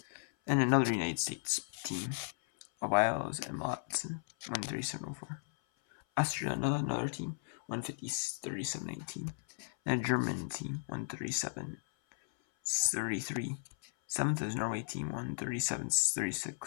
Then another United States team, Wiles and Watson, 1:37:04. Austria, another team, 1:50:37:19. Then a German team, 1:37:33. Seventh is Norway team,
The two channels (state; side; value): silent; right; 54 dB below the other